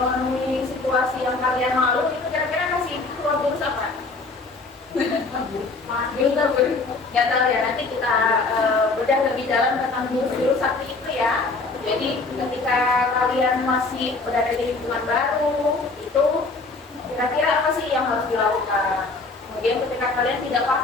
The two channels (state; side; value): quieter; right; 3.7 dB